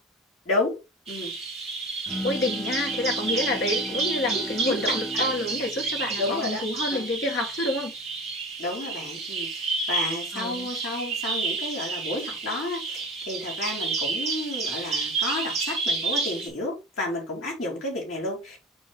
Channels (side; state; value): both; normal; correlation 0.30